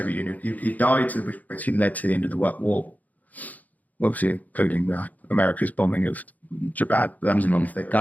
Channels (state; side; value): late; right; 0.079 ms